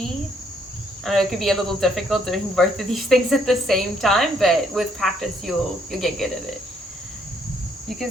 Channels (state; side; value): normal; both; correlation 0.69